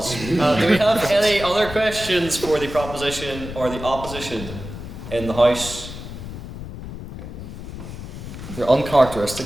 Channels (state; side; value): noise; left; rumble, 10 dB below the sound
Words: Do we have any other questions for the proposition or the opposition in the House? You're